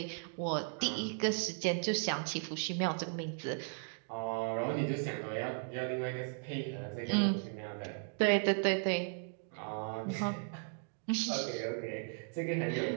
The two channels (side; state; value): left; silent; 54 dB below the other